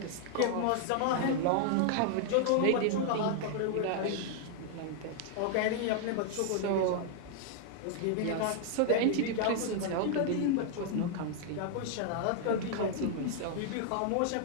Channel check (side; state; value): both; different; correlation 0.00